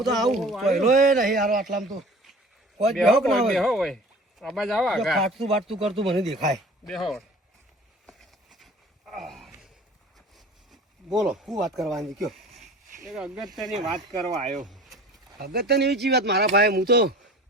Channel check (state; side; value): normal; both; correlation 0.43